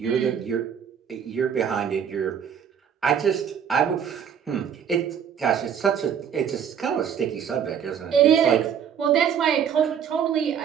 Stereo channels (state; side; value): quieter; left; 8.1 dB